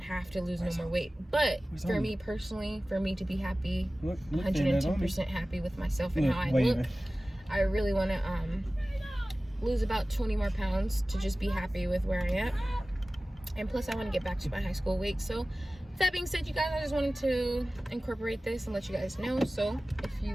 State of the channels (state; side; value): normal; both; correlation 0.97